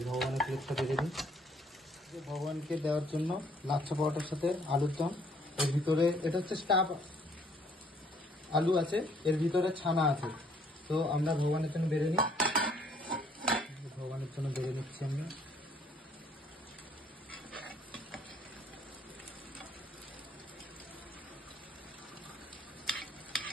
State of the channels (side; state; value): both; normal; correlation 0.63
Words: ভগবানের প্লেটটা বেড়ে দিই, ভগবানকে দেওয়ার জন্য লাচ্ছা পরোটার সাথে আলুর দম। এর ভিতরে এটা হচ্ছে স্টাফ আলু আছে, এর ভিতরে ছানা আছে। তো আমরা ভগবানের জন্য বেড়ে নিই, ভগবানের জন্য বেড়ে নিচ্ছি আমরা।